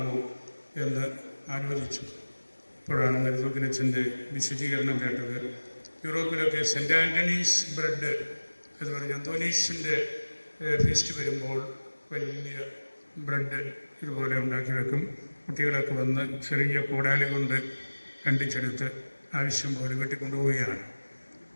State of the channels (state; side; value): inverted; both; correlation -1.00